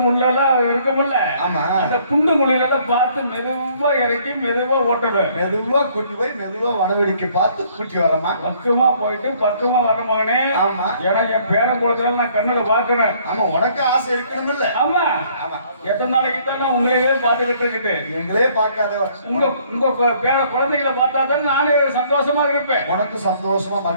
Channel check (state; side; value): inverted; both; correlation -0.62